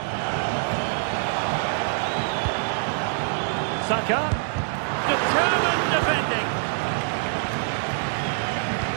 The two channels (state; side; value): silent; left; digital silence